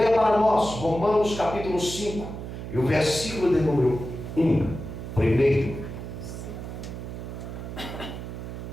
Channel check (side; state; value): right; noise; hum, 8 dB below the sound